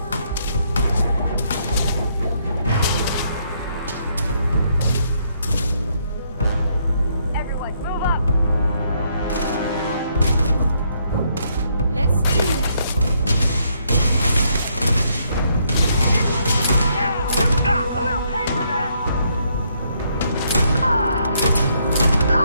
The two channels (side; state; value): both; inverted; correlation -0.72